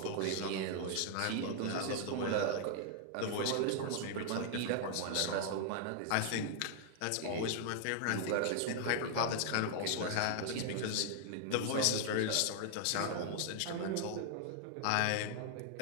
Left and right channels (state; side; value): different; both; correlation 0.00